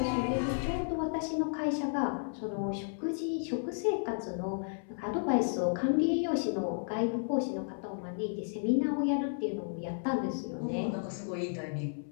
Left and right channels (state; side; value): silent; right; 56 dB below the other